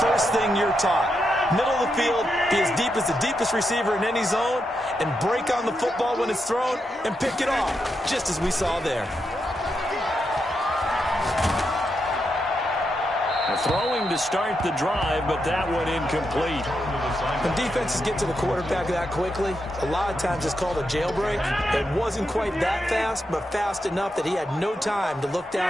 thing you're taught. Middle of the field, be as deep as the deepest receiver in any zone, and break on the football when it's thrown, and pick it off, just as we saw there. Throwing to start the drive, but that one incomplete. When defenses get to the quarterback that quickly, a lot of times it's called a jailbreak. It wasn't quite that fast, but fast enough that he had no time to look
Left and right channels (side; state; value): both; normal; correlation 0.84